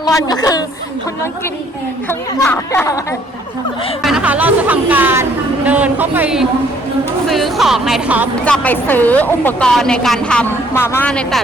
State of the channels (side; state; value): both; normal; correlation 0.63